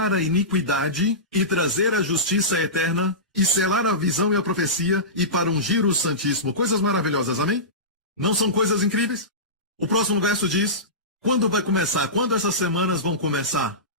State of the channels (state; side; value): normal; both; correlation -0.19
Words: a iniquidade e trazer a justiça eterna e selar a visão e a profecia e para ungir o Santíssimo. Coisas maravilhosas, amém? Não são coisas incríveis? O próximo verso diz, quando vai começar? Quando essas semanas vão começar?